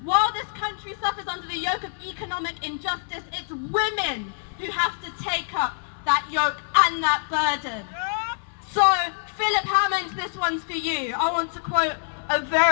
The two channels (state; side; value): silent; right; 59 dB below the other